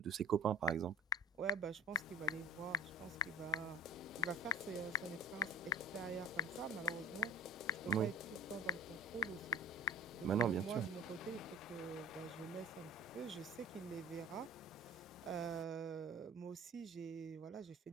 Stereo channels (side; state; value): both; normal; correlation 0.36